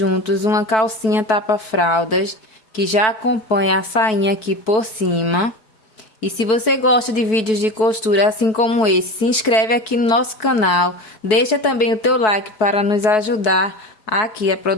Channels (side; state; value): right; late; 4.6 ms